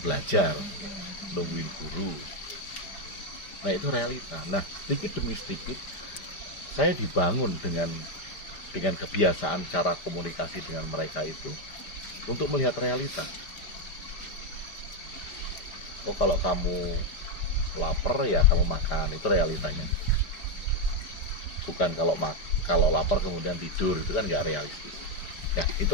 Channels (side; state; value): right; late; 5.1 ms